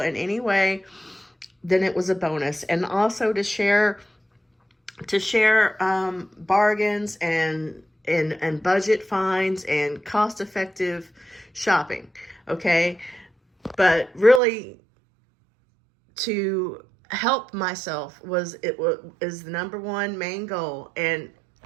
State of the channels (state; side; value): drops out; left; at 14.4 s